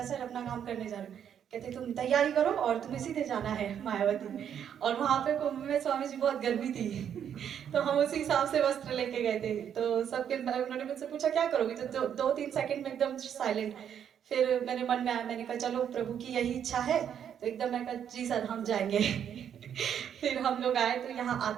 सर अपना काम करने जा रही हूँ। कहते तुम तैयारी करो और तुम्हें सीधे जाना है मायावती। और वहाँ पे कुंभ में स्वामी जी बहुत गर्मी थी तो हम उसी हिसाब से वस्त्र लेके गए थे। तो सबके उन्होंने मुझसे पूछा क्या करोगी, तो 2-3 सेकंड में एकदम साइलेंट। फिर मेरे मन में आया, मैंने कहा चलो प्रभु की यही इच्छा है, तो एकदम मैं कहा जी सर हम जाएंगे फिर हम लोग आए। तो यहाँ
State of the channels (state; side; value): quieter; left; 8.8 dB